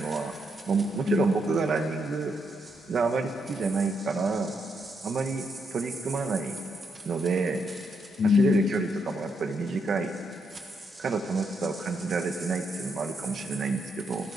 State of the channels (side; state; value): both; normal; correlation 0.79